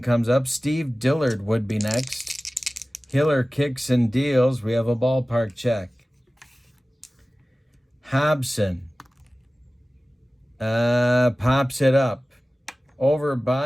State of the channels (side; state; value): both; normal; correlation 0.97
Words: up. Steve Dillard would be next. Hiller kicks and deals. We have a ballpark check. Hobson pops it up. Over